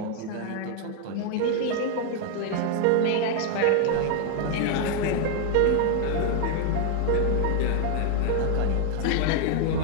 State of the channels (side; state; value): both; different; correlation 0.00